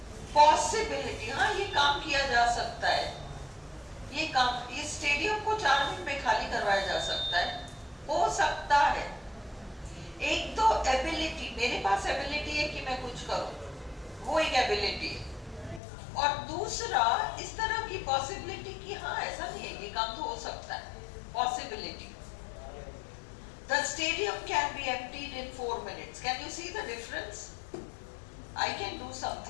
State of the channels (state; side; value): drops out; right; at 15.8 s